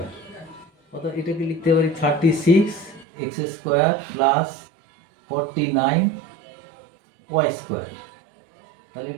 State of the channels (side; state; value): left; drops out; at 3.1 s